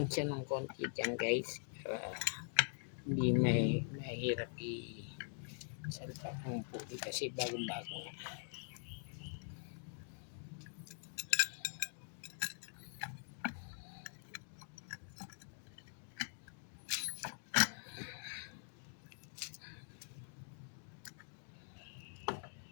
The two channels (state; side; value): silent; right; digital silence